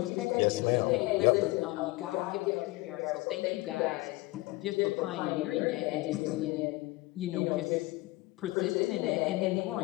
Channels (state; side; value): quieter; right; 21.3 dB